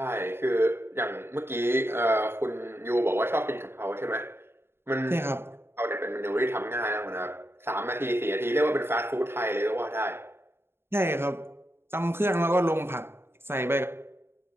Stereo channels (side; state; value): left; late; 0.11 ms